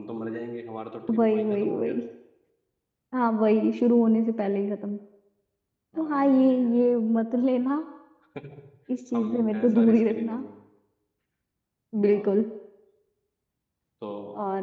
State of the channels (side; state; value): both; identical; correlation 1.00